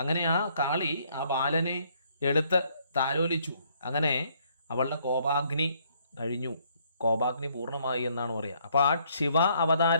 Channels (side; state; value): both; inverted; correlation -0.67